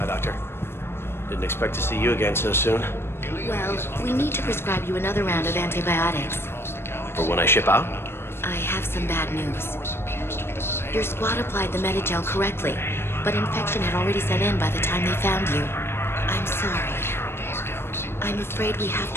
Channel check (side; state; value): right; late; 0.12 ms